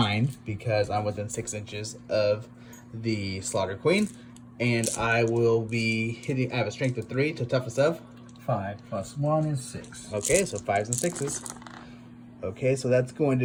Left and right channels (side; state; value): both; identical; correlation 1.00